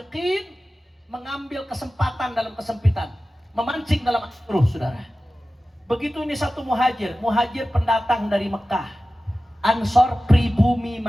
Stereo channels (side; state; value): both; normal; correlation 0.95